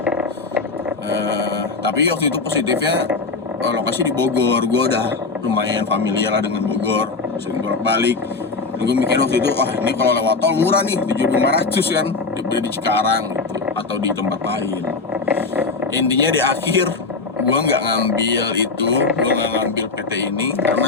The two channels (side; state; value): right; quieter; 4.1 dB